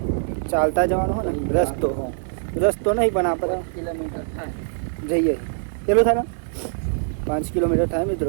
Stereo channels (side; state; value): left; silent; digital silence